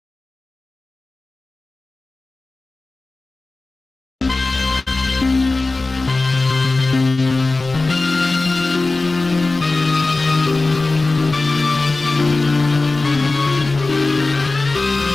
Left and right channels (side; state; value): right; quieter; 3.4 dB